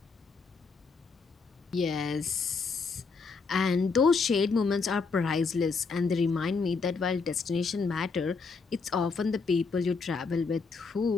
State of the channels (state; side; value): quieter; right; 4.7 dB